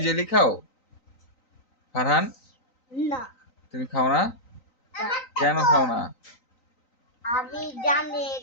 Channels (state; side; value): late; right; 3.9 ms